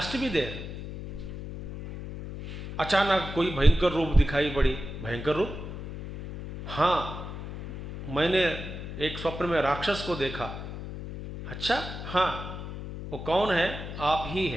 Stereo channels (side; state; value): left; noise; hum, 9 dB below the sound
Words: to be there. अचानक कोई भयंकर रूप दिखाई पड़ी, भयंकर रूप, हाँ मैंने एक स्वप्न में राक्षस को देखा. अच्छा, हाँ वो कौन है? आप ही